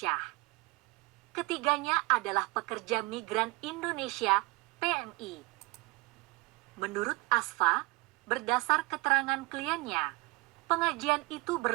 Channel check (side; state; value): left; quieter; 24.0 dB